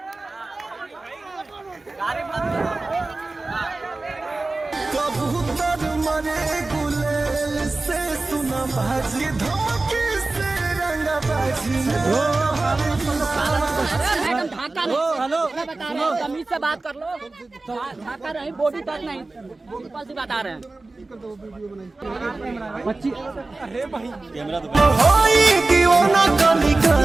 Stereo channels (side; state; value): left; quieter; 3.3 dB